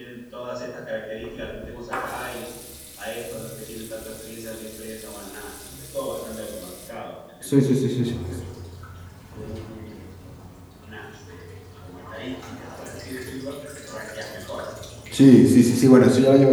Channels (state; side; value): identical; both; correlation 1.00